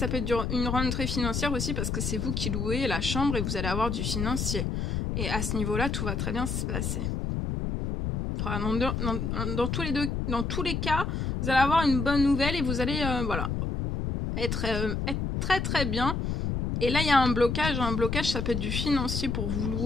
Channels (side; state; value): left; noise; rumble, 1 dB below the sound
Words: peut être une rentrée financière aussi parce que c'est vous qui louez la chambre et vous allez avoir du financier. Et à ce niveau-là, tout va très bien se passer. Enfin, dans tous les cas, vous allez avoir une bonne nouvelle et vous allez voilà, être très bien. Et là il y a un blocage, ça peut être du financier pour vous